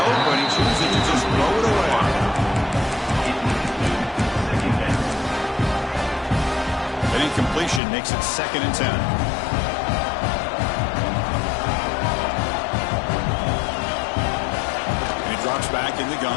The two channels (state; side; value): drops out; right; at 7.8 s